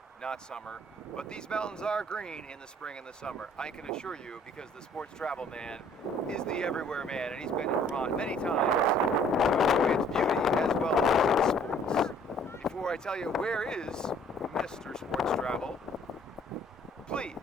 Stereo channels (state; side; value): normal; both; correlation 0.57